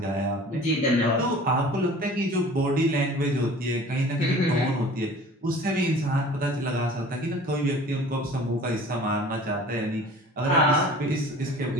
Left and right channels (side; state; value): both; normal; correlation 0.45